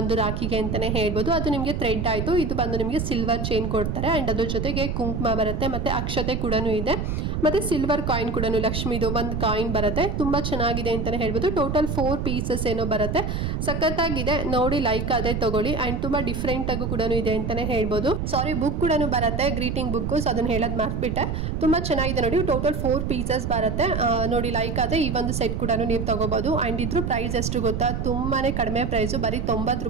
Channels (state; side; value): noise; right; rumble, 2 dB below the sound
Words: ರಾಖಿಗೆ ಅಂತಾನೆ ಹೇಳ್ಬೋದು. ಅದು ನಿಮಗೆ ಥ್ರೆಡ್ ಆಯ್ತು. ಇದು ಬಂದು ನಿಮಗೆ ಸಿಲ್ವರ್ ಚೈನ್ ಕೊಡ್ತಾರೆ. ಅಂಡ್ ಅದ್ರ ಜೊತೆಗೆ ಕುಂಕುಮ ಬರುತ್ತೆ, ಮತ್ತೆ ಅಕ್ಷತೆ ಕೂಡ ಇದೆ. ಮತ್ತೆ ಸಿಲ್ವರ್ ಕಾಯಿನ್ ಕೂಡ ಲಕ್ಷ್ಮಿದು ಒಂದು ಕಾಯಿನ್ ಬರುತ್ತೆ. ತುಂಬಾ ಚೆನ್ನಾಗಿದೆ ಅಂತಾನೆ ಹೇಳ್ಬೋದು. ಟೋಟಲ್ 4 ಪೀಸಸ್ ಏನೋ ಬರುತ್ತೆ. ಸಖತ್ತಾಗಿದೆ. ನೋಡಿ, ಲೈಕ್ ಆದ್ರೆ ತಗೊಳ್ಳಿ. ಅಂಡ್ ತುಂಬಾ ಡಿಫ್ರೆಂಟ್ ಆಗು ಕೂಡ ಇದೆ ಅಂತಾನೆ ಹೇಳ್ಬೋದು. ಸಾರಿ, ಬುಕ್ ಕೂಡ ಬರುತ್ತೆ, ಗ್ರೀಟಿಂಗ್ ಬುಕ್. ಸೊ ಅದನ್ನ ಹೇಳೋದ್ ಮರ್ತ್ಬಿಟ್ಟೆ. ತುಂಬಾ ಚೆನ್ನಾಗಿದೆ. ನೋಡಿ, ಟೋಟಲ್ 4 ಪೀಸಸ್ ಬರುತ್ತೆ. ನೋಡಿ, ಲೈಕ್ ಆದ್ರೆ ಈ ಒಂದು ಸೆಟ್ ಕೂಡ ನೀವು ತಗೋಬಹುದು. ಅಂಡ್ ಇದ್ರ ಪ್ರೈಸ್ ಎಷ್ಟು ಗೊತ್ತಾ, ತುಂಬಾನೇ ಕಡಿಮೆ ಪ್ರೈಸು ಬರೀ 90